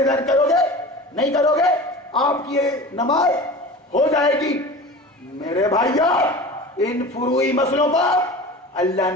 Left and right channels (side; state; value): both; normal; correlation 0.35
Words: کرو گے، نہیں کرو گے آپ کی نماز ہو جائے گی۔ میرے بھائیو، ان فروعی مسئلوں کو اللہ